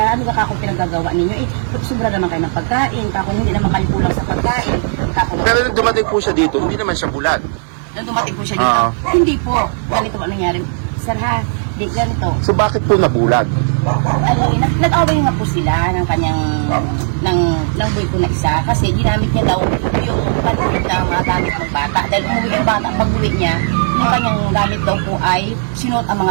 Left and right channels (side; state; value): left; silent; 60 dB below the other